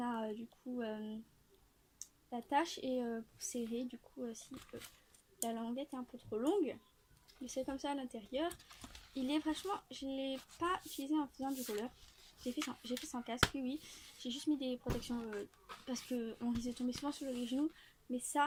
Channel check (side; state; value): both; identical; correlation 1.00